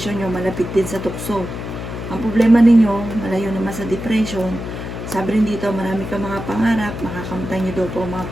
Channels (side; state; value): left; noise; hum, 7 dB below the sound